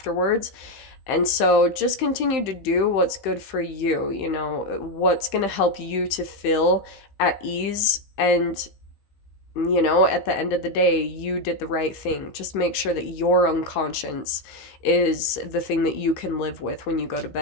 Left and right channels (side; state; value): right; late; 15 ms